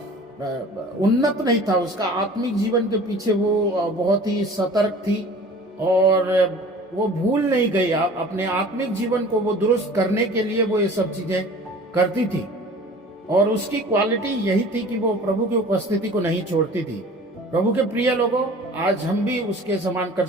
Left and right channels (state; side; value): normal; both; correlation 0.44